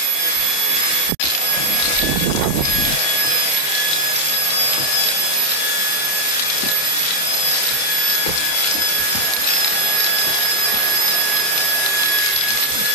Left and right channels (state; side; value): late; right; 29 ms